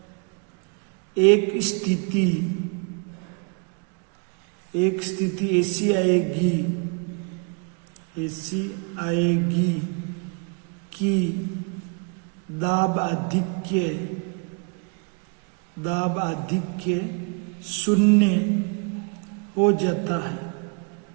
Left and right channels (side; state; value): left; quieter; 35.2 dB